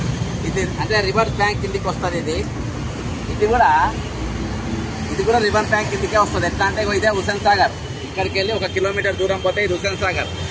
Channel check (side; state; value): both; identical; correlation 1.00